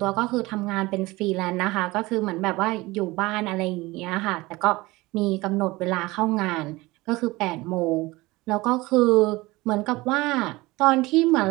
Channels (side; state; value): left; quieter; 21.2 dB